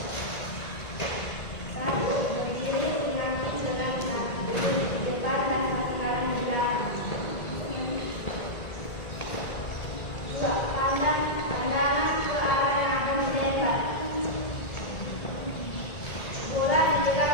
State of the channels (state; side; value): late; right; 1.9 ms